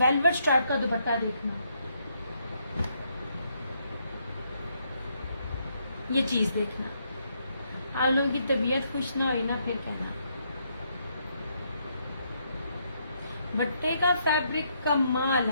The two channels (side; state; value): both; inverted; correlation -0.75